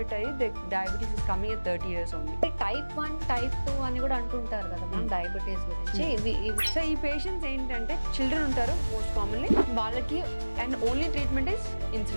అయ్యి diabetes is coming at 30 years only. Type 1 type 2 అని కూడా అంటుంటారు కదా మనం డయాబెటీస్ గురించి. సో ఈ పేషెంట్స్ ఏంటంటే చిల్డ్రన్ ఉంటారు మోస్ట్ కామన్లీ, వాళ్ళకి and only treatment is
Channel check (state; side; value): inverted; both; correlation -1.00